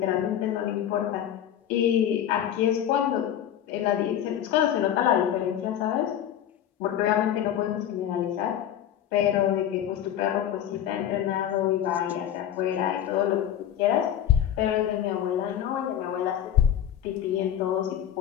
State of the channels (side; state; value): right; quieter; 10.6 dB